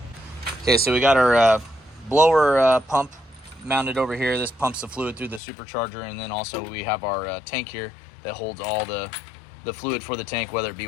Okay, so we got our blower pump mounted over here. This pumps the fluid through the supercharger, and then also we have our tank here that holds all the fluid for the tank, whether it be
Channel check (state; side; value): drops out; right; at 5.4 s